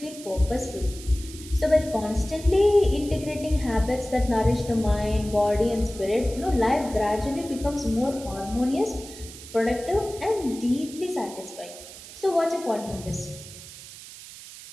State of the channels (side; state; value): right; noise; hiss, 15 dB below the sound